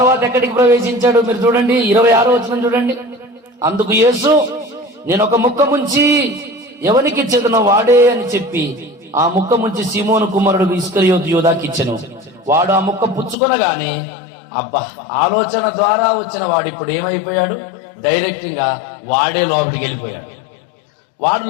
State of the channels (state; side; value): drops out; right; at 13.4 s